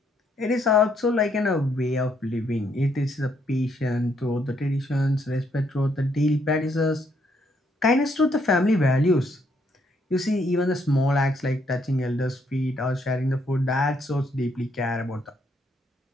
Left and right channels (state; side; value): normal; both; correlation 0.72